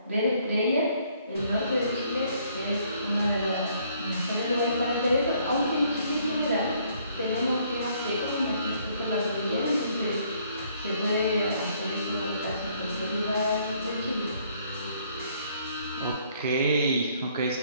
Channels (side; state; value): both; inverted; correlation -0.65